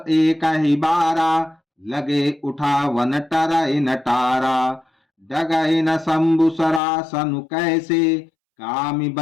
एक ही 12, लगे उठा वन टरई नटारा। डगई न शंभु सरासनु कैसे, कामी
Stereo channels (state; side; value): drops out; right; at 6.8 s